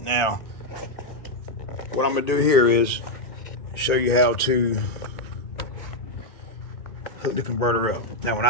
what I'm gonna do here is show you how to hook the converter up. Now, when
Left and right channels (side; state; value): right; late; 1.3 ms